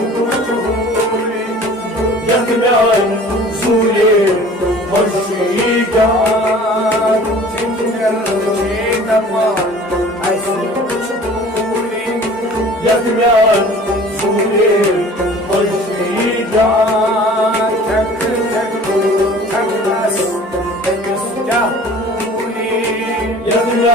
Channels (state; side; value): normal; both; correlation 0.47